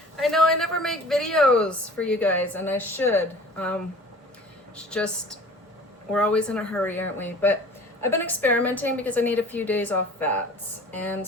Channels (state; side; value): normal; both; correlation 0.45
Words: I know I never make videos for you guys, and I should. It's just, we're always in a hurry, aren't we? But I've been experimenting because I need a few days off fats. And